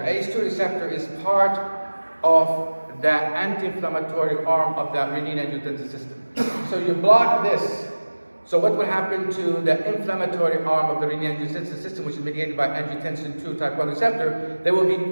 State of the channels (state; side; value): inverted; both; correlation -1.00